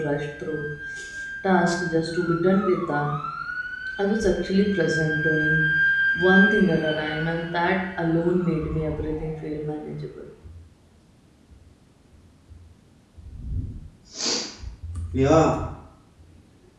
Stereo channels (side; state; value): both; identical; correlation 1.00